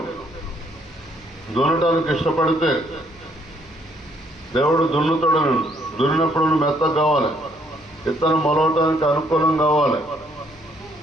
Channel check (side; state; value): left; noise; hum, 27 dB below the sound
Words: దున్నటానికి ఇష్టపడితే దేవుడు దున్నుతాడు. దున్నినప్పుడు నువ్వు మెత్తగా కావాలి. విత్తనం మొలవటానికి అనుకూలం కావాలి.